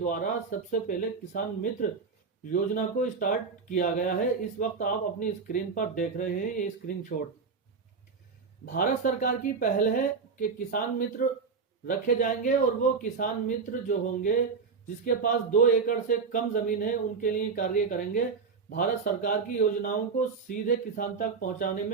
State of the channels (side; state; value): left; quieter; 5.1 dB